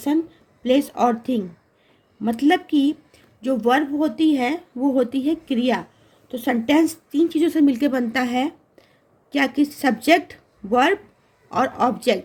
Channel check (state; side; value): identical; both; correlation 1.00